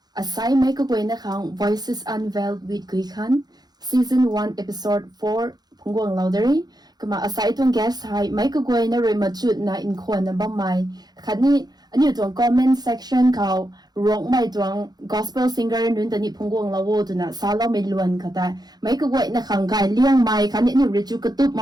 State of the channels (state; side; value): late; left; 0.19 ms